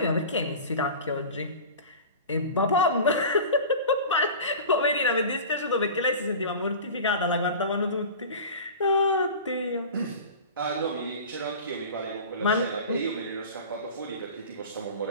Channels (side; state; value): both; inverted; correlation -0.35